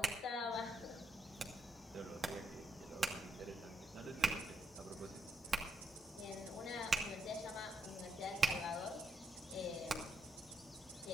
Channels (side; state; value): both; normal; correlation 0.80